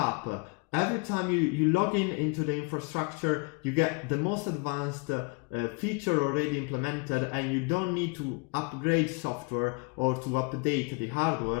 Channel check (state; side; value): quieter; right; 30.9 dB